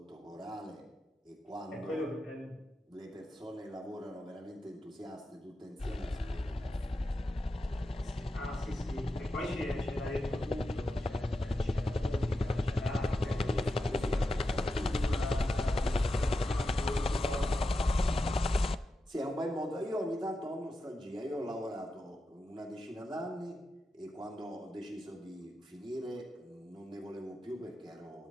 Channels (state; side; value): normal; both; correlation 0.89